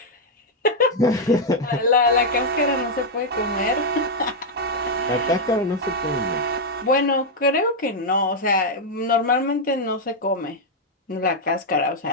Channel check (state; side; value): normal; both; correlation -0.02